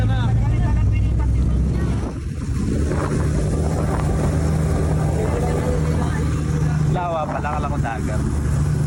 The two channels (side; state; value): both; identical; correlation 1.00